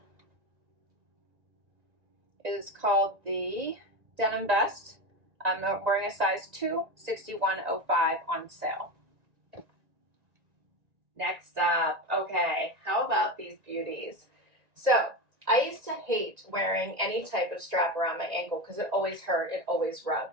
is called the denim vest. I'm wearing a size 2, 61.05 on sale. Next up, okay, how about these beauties? So I used to hate wearing any type of strap around my ankle because it always hurt, it always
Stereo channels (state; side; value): late; left; 1.9 ms